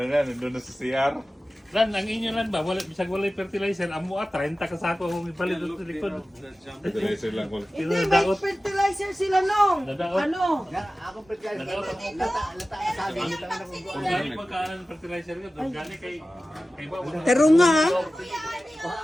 na, nandun na sa CR. Lan, ang inyo lan ba? Wala, bisag walay fertilizer. Amo 30 ka sako kung ipalit sa likod. Fertilizer lang ko. Hindi, may fertilizer sila nung. Nadaot. Ano? Kung gani pagkaan ng fertilizer ka, doon gani kay ba? Pero nga, ha?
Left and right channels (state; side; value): normal; both; correlation 0.96